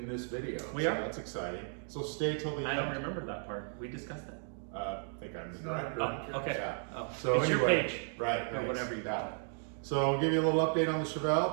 this video. We are? That's exciting. So stay till the end. I don't remember that part. We discussed that. I think I'm the director. Oh, okay. Yeah. Oh. So it's anyway, your page. Right. Or whatever you call it. So I'll give you a little update on the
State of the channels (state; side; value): silent; left; 55 dB below the other